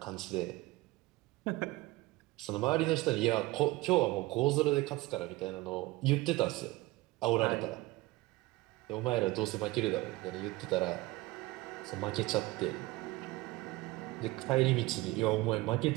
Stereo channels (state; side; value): quieter; left; 20.1 dB